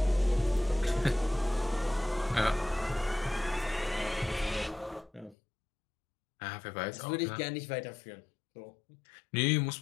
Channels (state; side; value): drops out; right; at 5.4 s